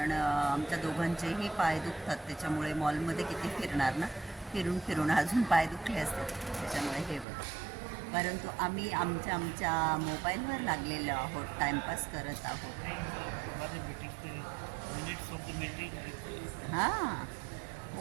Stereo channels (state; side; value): drops out; left; at 7.2 s